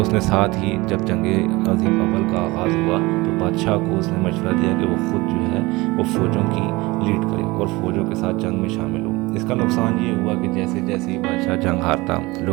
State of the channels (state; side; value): quieter; left; 22.2 dB